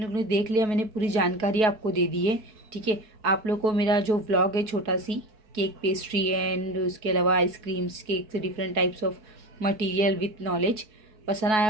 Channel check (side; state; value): left; late; 4.7 ms